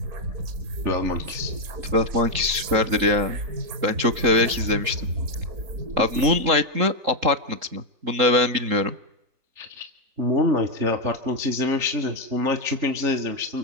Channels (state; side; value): late; left; 3.8 ms